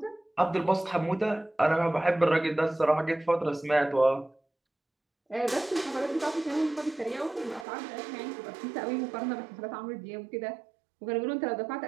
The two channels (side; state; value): left; drops out; at 7.7 s